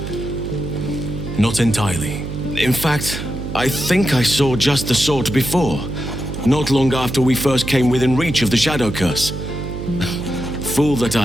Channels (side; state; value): right; noise; hum, 7 dB below the sound